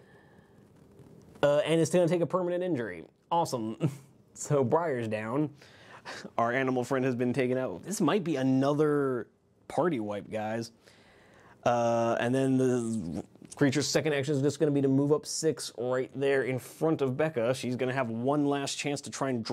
And it's going to take a permanent injury. Awesome. So Briar's down. Our animal friend has been taken out. This might be another party wipe, guys. And then the creature's second action is just going to be to move up 6 right there in front of Becca. She's going to have one last chance to try and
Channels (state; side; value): identical; both; correlation 1.00